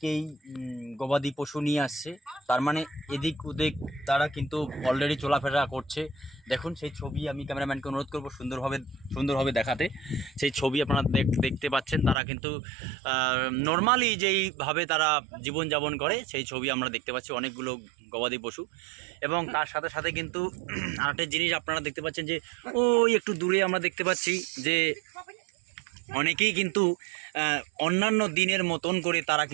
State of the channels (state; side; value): drops out; left; at 12.2 s